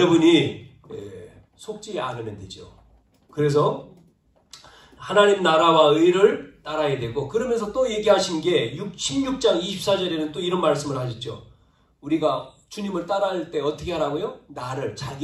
속지 않으면 되죠. 그래서 하나님 나라와 의를 따라야 되고, 그러면서 또 얘기하신 게 16장 24절에는 또 이런 말씀을 하셨죠. 우리가 주님을 따라할 때 어떻게 하라고요?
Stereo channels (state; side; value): identical; both; correlation 1.00